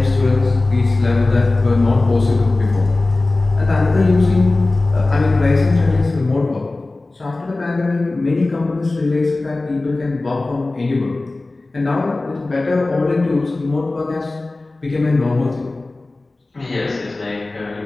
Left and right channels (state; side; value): quieter; right; 3.1 dB